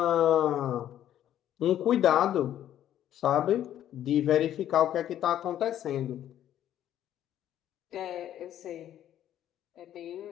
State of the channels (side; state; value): right; quieter; 11.4 dB